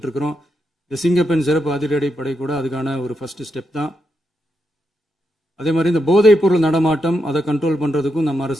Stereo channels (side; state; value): both; normal; correlation 0.84